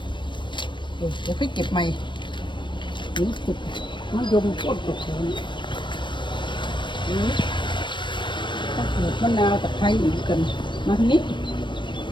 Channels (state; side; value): late; right; 0.23 ms